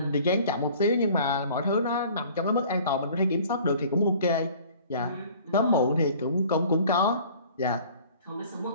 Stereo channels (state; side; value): inverted; both; correlation -0.50